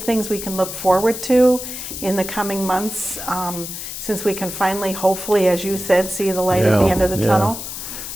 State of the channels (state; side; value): noise; left; hiss, 8 dB below the sound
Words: things we can look forward to in the coming months, since we can finally, hopefully, as you said, see the light at the end of the tunnel?